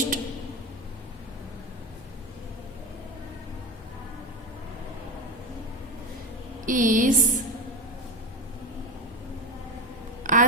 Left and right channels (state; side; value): normal; both; correlation 0.18